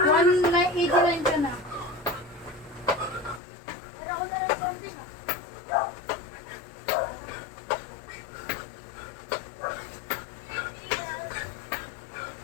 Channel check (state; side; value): drops out; right; at 3.4 s